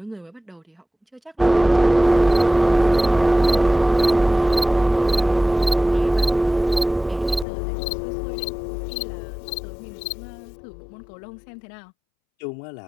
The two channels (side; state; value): right; drops out; at 7.5 s